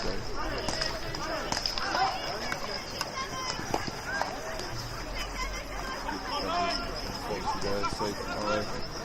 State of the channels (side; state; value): both; identical; correlation 1.00